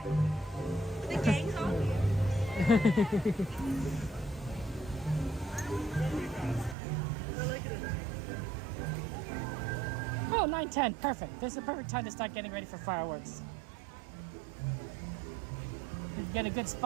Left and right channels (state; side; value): drops out; left; at 6.8 s